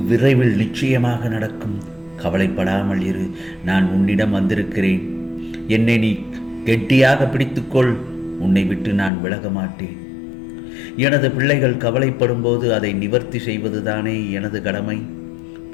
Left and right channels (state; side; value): drops out; right; at 9.1 s